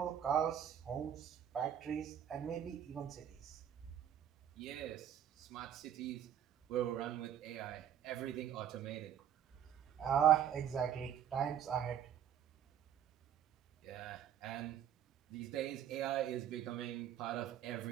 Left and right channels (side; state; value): left; quieter; 9.8 dB